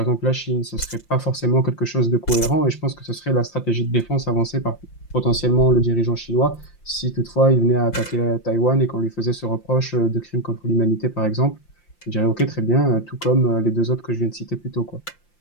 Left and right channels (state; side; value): late; right; 5.8 ms